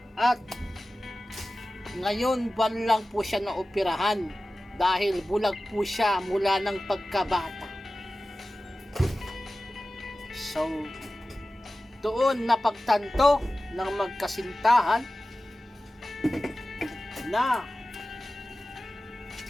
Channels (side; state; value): both; normal; correlation 0.95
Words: At ngayon buwan lang po siya naoperahan dahil bulag po siya mula ng pagkabata." So, doon napagtanto ng magkasintahan na